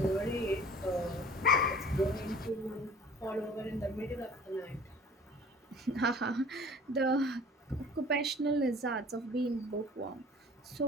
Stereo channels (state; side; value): normal; both; correlation 0.46